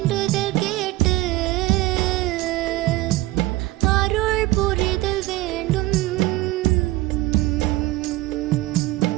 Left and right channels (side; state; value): left; quieter; 18.5 dB